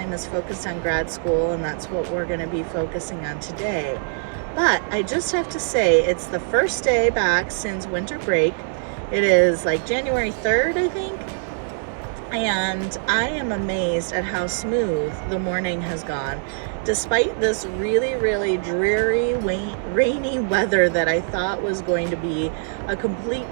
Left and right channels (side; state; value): left; silent; 62 dB below the other